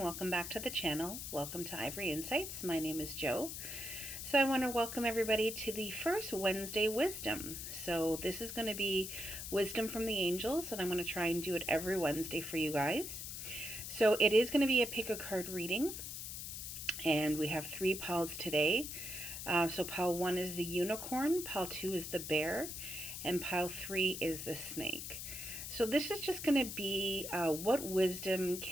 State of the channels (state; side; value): noise; left; hiss, 7 dB below the sound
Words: welcome back to the channel. Welcome to Ivory Insights. My name is Jo. So I want to welcome everybody to the first Wednesday Wisdom. So this is going to be Wisdom from the Angels, and I'm going to try and do it every Wednesday for you guys. So it is going to be a pick a card reading, and we have 3 piles today. So pile 1 is the unicorn, pile 2 is the bear, and pile 3 is the snake. So this is just going to be what wisdom